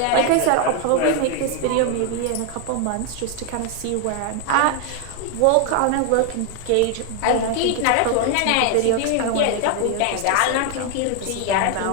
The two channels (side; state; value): both; different; correlation 0.00